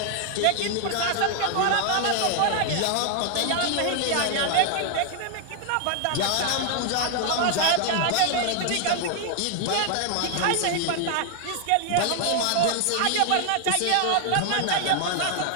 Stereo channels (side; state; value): both; different; correlation 0.00